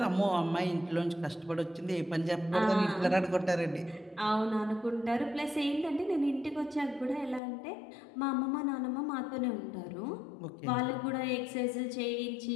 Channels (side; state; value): right; drops out; at 7.4 s